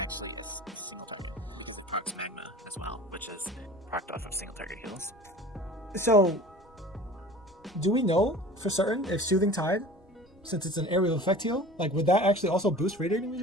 a single target because it procs Magma as well, which is procced off of single target heals. So, do we know for certain if Soothing Tide, since it's an area of effect heal, like would that actually also boost Radiating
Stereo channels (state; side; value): normal; both; correlation 0.41